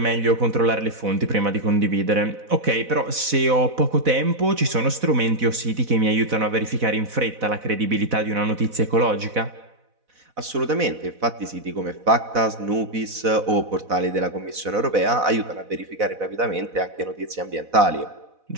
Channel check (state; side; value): late; left; 4.0 ms